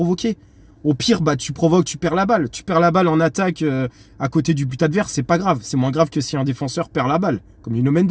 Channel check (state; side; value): identical; both; correlation 1.00